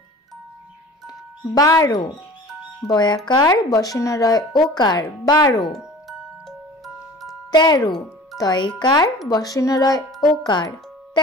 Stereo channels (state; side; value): normal; both; correlation 0.42